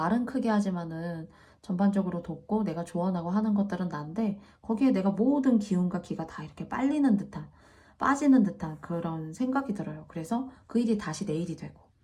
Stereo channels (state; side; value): identical; both; correlation 1.00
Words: 크게 하지만은 전반적으로 돕고 내가 조언하고 하는 것들은 난데 거기에 내가 모든 기운과 기가 다 이렇게 빨리는 듯한, 빠지는 듯한 그런 생각이 들어요. 그래서 그 일이 다시 내 일이 되고,